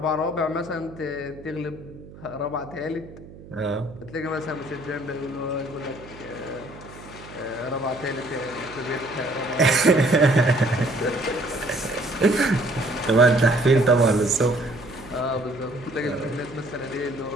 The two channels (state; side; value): noise; right; hum, 18 dB below the sound